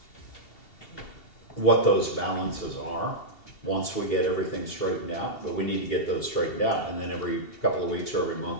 what those balances are once we get everything straightened out, but we need to get those straightened out, and then every couple of weeks or every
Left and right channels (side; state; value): right; late; 2.7 ms